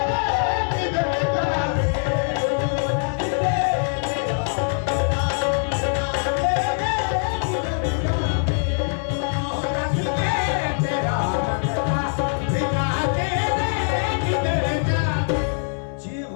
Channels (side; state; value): right; silent; digital silence